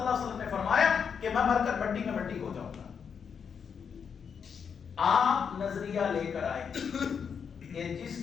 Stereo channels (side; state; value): right; quieter; 6.8 dB